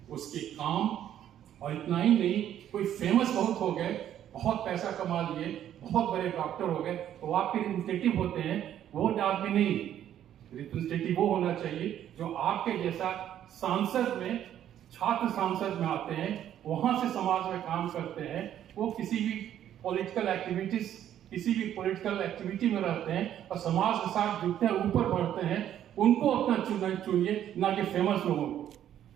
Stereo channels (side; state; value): left; quieter; 10.9 dB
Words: उसके काम, और इतना ही नहीं, कोई फेमस बहुत हो गए, बहुत पैसा कमा लिए, बहुत बड़े डॉक्टर हो गए, तो वो आपके रिप्रेजेंटेटिव होते हैं, वो आदमी नहीं। रिप्रेजेंटेटिव वो होना चाहिए जो आपके जैसा सांसद में, छात्र सांसद में आते हैं, वहां से समाज में काम करते हैं, वो किसी भी पॉलिटिकल एक्टिविटी में रहते हैं और समाज के साथ जुड़ते हैं, ऊपर बढ़ते हैं, उनको अपना चुनिए, ना कि फेमस लोगों को।